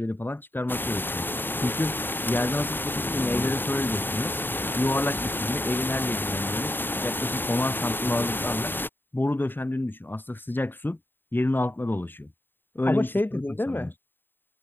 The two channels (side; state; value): right; late; 0.096 ms